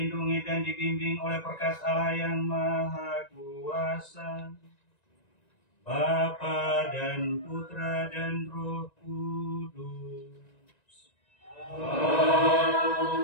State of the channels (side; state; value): right; late; 1.9 ms